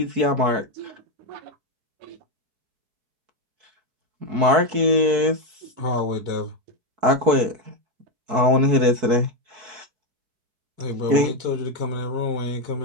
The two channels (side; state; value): left; late; 4.6 ms